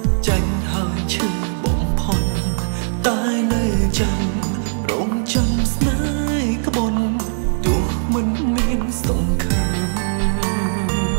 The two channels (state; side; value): silent; left; digital silence